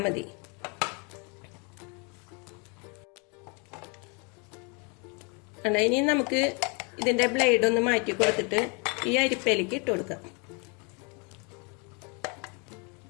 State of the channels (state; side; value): quieter; right; 33.4 dB